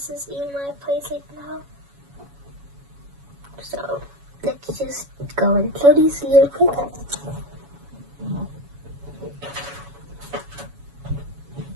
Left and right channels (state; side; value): late; left; 7.1 ms